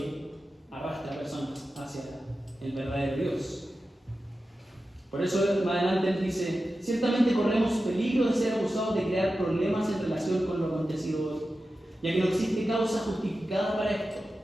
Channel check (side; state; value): both; normal; correlation 0.93